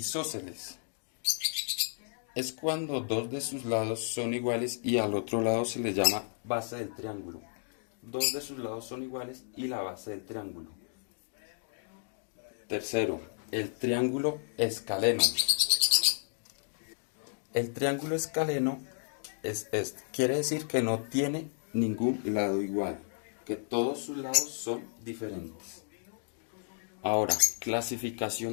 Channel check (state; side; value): silent; right; digital silence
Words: Es cuando 2 de sus lados son iguales y al otro lado se le llama base del triángulo. 2 de sus lados son iguales y la base del triángulo. Tercero, el triángulo escaleno. El triángulo escaleno quiere decir que no tiene ningún lado igual, que todos sus lados son diferentes. Ahora,